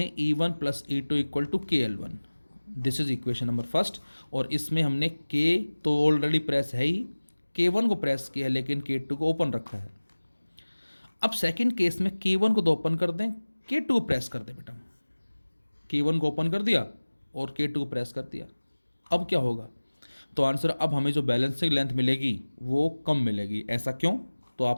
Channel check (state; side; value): inverted; both; correlation -1.00